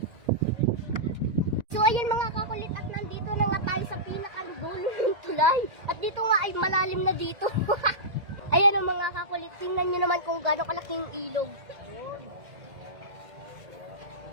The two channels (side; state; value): left; late; 2.2 ms